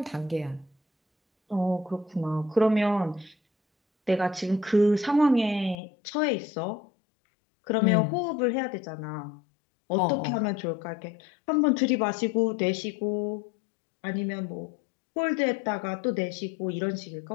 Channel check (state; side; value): drops out; right; at 5.8 s